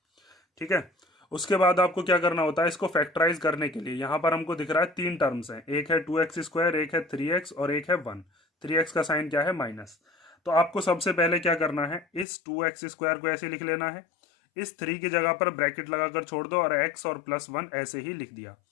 ठीक है। उसके बाद आपको क्या करना होता है, इसको फैक्टराइज करने के लिए यहाँ पर हमको दिख रहा है तीन टर्म्स हैं, एक है 2x², एक है 3x और एक है 1। 3x का साइन क्या है, माइनस। तो आपको सबसे पहले क्या करना है, इस 2x² को ऐसे लिख लेना है, इस 3 की जगह पर ब्रैकेट लगाकर छोड़ दो और x और प्लस 1 ऐसे ही लिख दिया।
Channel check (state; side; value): drops out; right; at 12.2 s